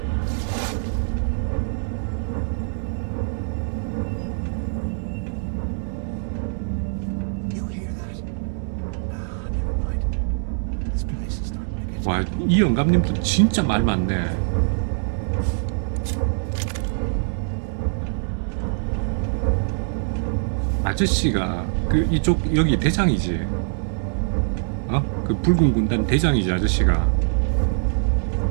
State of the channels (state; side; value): silent; left; digital silence